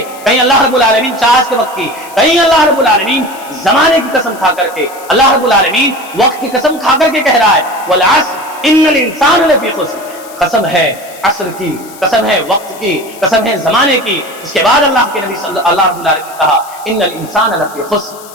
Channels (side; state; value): left; noise; hiss, 19 dB below the sound